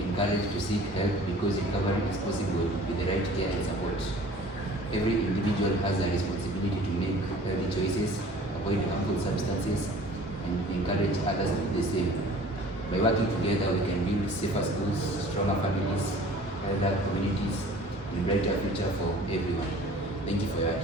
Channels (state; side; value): normal; both; correlation 0.47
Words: encouraged to seek help because recovery is possible with the right care and support. Every individual has a responsibility to make healthy choices, avoid harmful substances, and encourage others to do the same. By working together, we can build safer schools, stronger families, healthier communities, and brighter future for everyone. Thank you for your